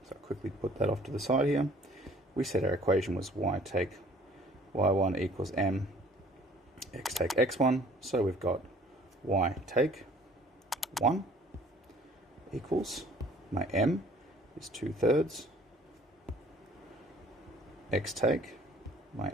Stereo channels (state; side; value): normal; both; correlation 0.55